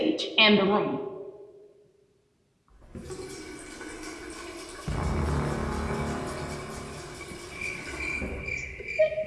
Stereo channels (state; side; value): identical; both; correlation 1.00